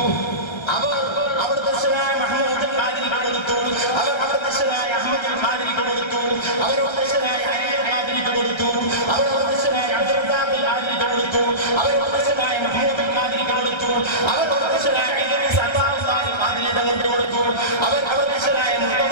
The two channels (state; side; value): late; right; 1.3 ms